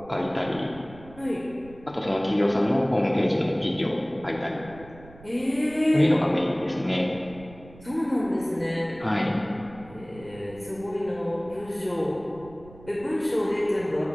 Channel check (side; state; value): right; noise; rumble, 20 dB below the sound